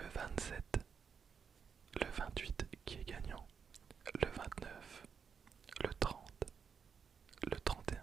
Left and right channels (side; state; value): left; quieter; 6.5 dB